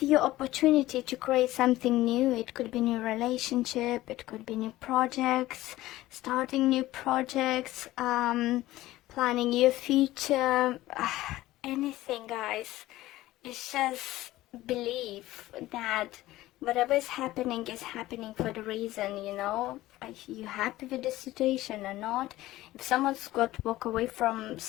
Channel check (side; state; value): right; quieter; 16.5 dB